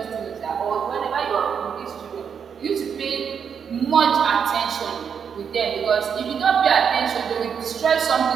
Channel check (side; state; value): left; quieter; 7.1 dB